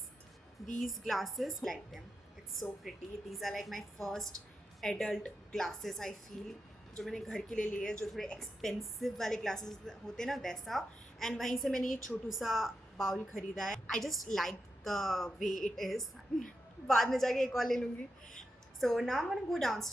These glasses, like them. It's so pretty. These are like my first adult glasses, I feel. जो मैंने घर के लिए लिए हैं, जो थोड़े एक्सपेंसिव वाले ग्लासेस होते हैं ना, वैसा. एंड वहीं से मैंने ये छोटू सा बाउल खरीदा है. I just like the way it is. बाद में जाके एक और ले लूँगी. So now I'm going to go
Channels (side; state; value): both; normal; correlation 0.87